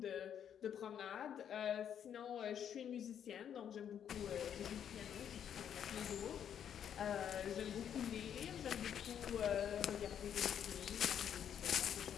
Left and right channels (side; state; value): right; quieter; 9.0 dB